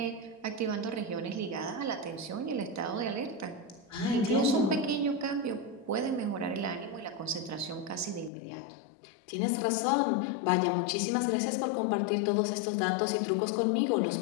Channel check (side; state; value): right; drops out; at 8.3 s